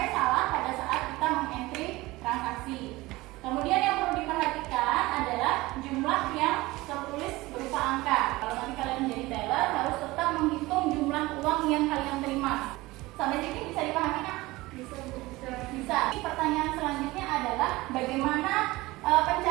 salah pada saat kita mengentry transaksi. Kemudian yang perlu diperhatikan adalah jumlah yang tertulis berupa angka. Kalau nanti kalian menjadi teller harus tetap menghitung jumlah uang yang kalian terima. Sampai sini bisa dipahami, Kak? Bisa. Pertanyaan selanjutnya adalah bagaimana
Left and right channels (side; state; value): left; quieter; 20.1 dB